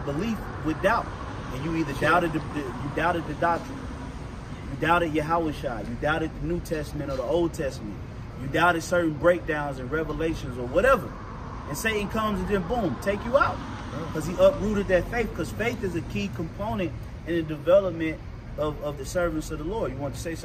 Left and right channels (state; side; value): identical; both; correlation 1.00